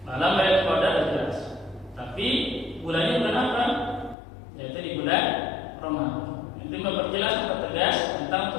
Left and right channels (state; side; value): drops out; right; at 4.2 s